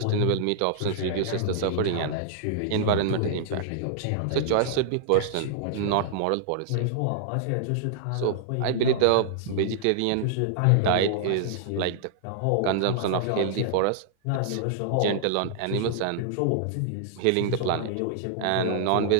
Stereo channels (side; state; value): both; different; correlation -0.01